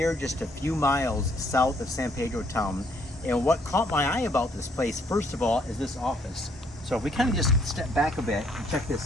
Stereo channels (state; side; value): normal; both; correlation 0.67